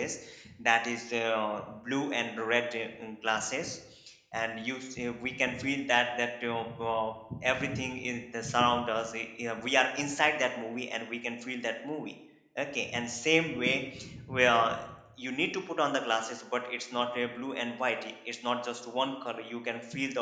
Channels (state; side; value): identical; both; correlation 1.00